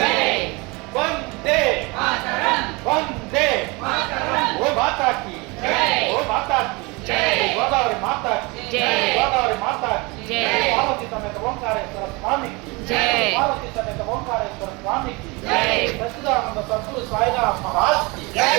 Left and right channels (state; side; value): quieter; left; 26.4 dB